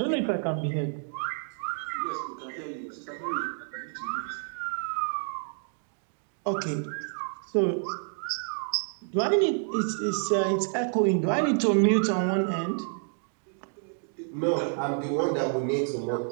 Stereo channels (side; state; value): left; silent; 59 dB below the other